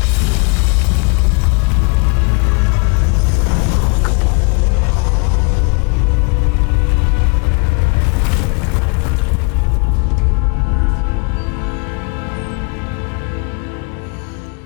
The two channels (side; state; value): right; quieter; 33.4 dB